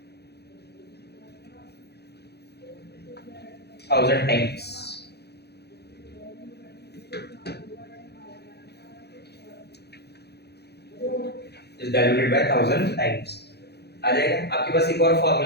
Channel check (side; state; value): right; late; 0.48 ms